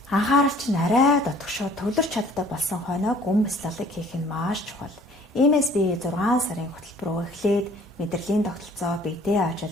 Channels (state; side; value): normal; both; correlation 0.55